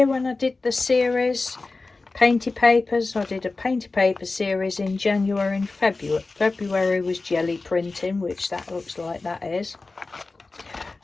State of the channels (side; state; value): right; quieter; 3.6 dB